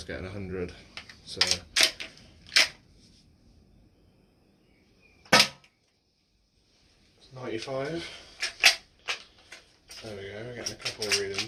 getting 100. So 95. There we go, we're getting a couple of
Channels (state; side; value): identical; both; correlation 1.00